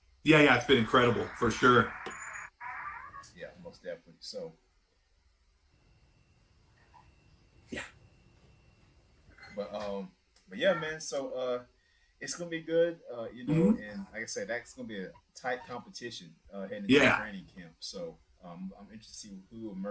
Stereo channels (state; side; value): identical; both; correlation 1.00